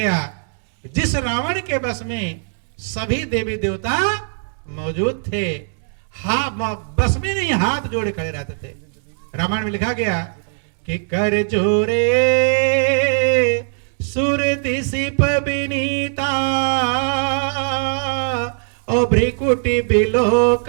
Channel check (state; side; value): silent; left; 66 dB below the other